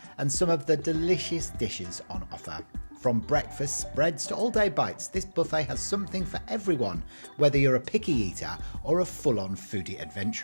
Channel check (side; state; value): both; inverted; correlation -1.00